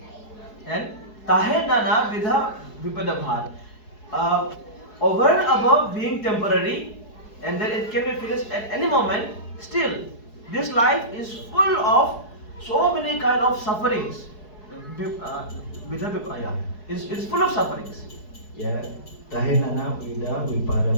And tahe nana vidha vipada bha. Over and above being temporary, and then it can be finished at any moment. Still, this life is full of so many kind of sufferings. It's full of sufferings. Ya, tahe nana vida vipada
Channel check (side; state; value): right; late; 4.7 ms